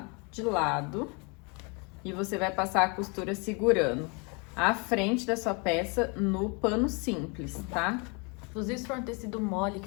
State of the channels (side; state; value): right; quieter; 32.3 dB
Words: de lado. E você vai passar a costura segurando a frente da sua peça no pano simples, tá? Inclusive, se for um tecido mole